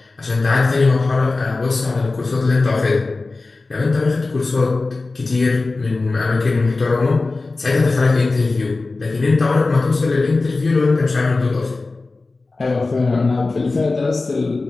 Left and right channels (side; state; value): right; quieter; 3.6 dB